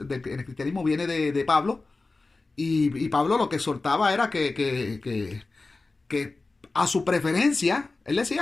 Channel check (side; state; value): right; quieter; 3.5 dB